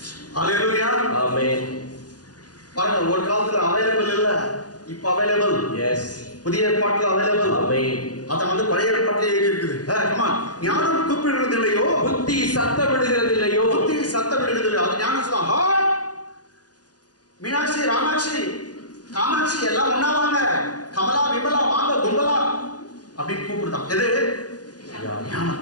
அல்லேலூயா. ஆமென். பாருங்க, ஒரு காலத்துல அவைலபிள் இல்ல, இப்ப அவைலபிள். எஸ். புதிய ஏற்பாட்டுல அவைலபிள். ஆமென். அத பழைய ஏற்பாட்டிலே எழுதி இருக்குது. ஞானம் கூப்பிடுறது இல்லையோ, புத்தி சத்தமிடுகிறது இல்லையோ. புத்தி சத்தமிடுகிறது இல்லையோ. அது ஞானம் சொல்லுவாங்க. மீனாட்சி, ராமாட்சி, காமாட்சி எல்லாம் ஒண்ணா வாங்க, கமலா, விமலா வாங்க, கும்பலா அப்படின்னு கூப்பிடுதான். எது? ஞானம்.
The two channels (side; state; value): right; late; 0.69 ms